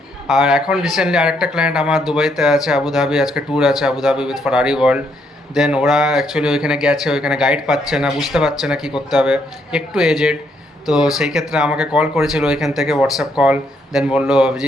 আর এখন রিসেন্টলি আরেকটা ক্লায়েন্ট আমার দুবাইতে আছে, আবুধাবি, আজকে ট্যুর আছে আবুধাবি উইথ ফারারি ওয়ার্ল্ড। দেন ওরা অ্যাকচুয়ালি ওইখানে গেছে, ওইখানে গাইড পাচ্ছে না, বুঝতে পারছে না কী করতে হবে, একটু এজেড। তো সেই ক্ষেত্রে আমাকে কল করেছিল ওইখান থেকে, হোয়াটসঅ্যাপ কল। দেন বললো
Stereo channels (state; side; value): normal; both; correlation 0.73